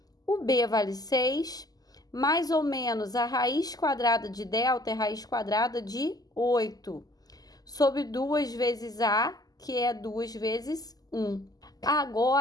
O B vale 6, mais ou menos a raiz quadrada de delta é raiz quadrada de 8, sobre 2 vezes A, que é 2 vezes 1.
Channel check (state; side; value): late; right; 0.18 ms